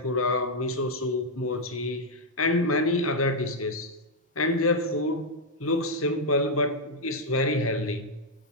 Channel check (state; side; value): normal; both; correlation -0.02